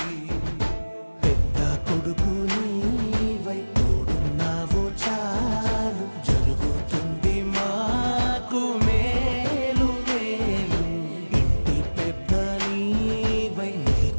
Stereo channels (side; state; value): both; inverted; correlation -1.00